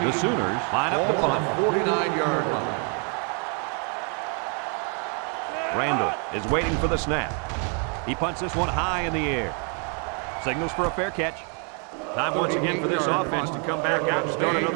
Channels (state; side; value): quieter; left; 39.2 dB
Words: The Sooners line up the Ball on punt. the 49-yard line. Randall is waiting for the snap. He punts this one high in the air. Signals for a fair catch. Time once again for this offense to come back out and start